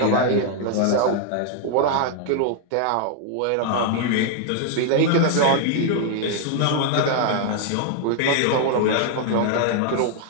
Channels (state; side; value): different; both; correlation 0.00